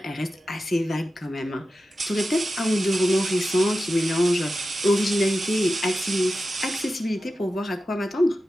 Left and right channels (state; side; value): normal; both; correlation 0.92